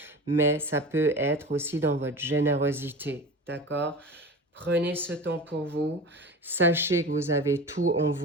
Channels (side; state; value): both; normal; correlation 0.33